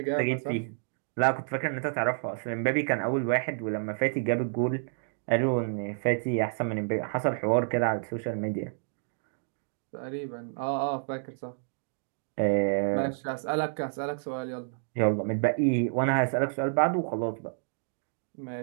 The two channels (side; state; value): left; silent; digital silence